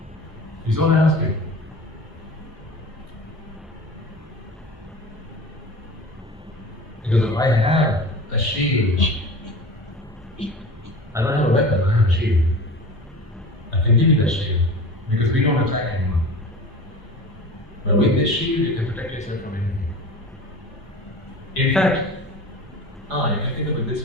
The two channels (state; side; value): normal; both; correlation 0.36